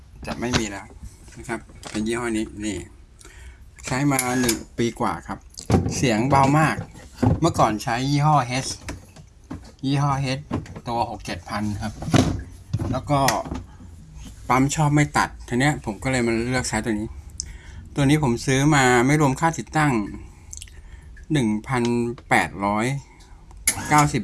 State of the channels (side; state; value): both; identical; correlation 1.00